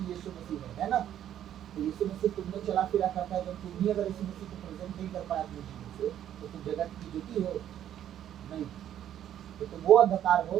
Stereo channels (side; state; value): left; quieter; 10.8 dB